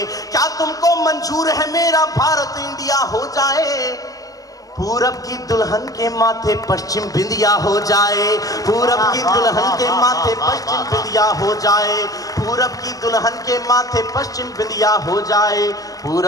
क्या तुमको मंजूर है मेरा भारत इंडिया हो जाए, पूरब की दुल्हन के माथे पश्चिम बिंदिया हो जाए, पूरब की दुल्हन के माथे पश्चिम बिंदिया हो जाए, पूरब की दुल्हन के माथे पश्चिम बिंदिया हो जाए,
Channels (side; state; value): right; late; 0.17 ms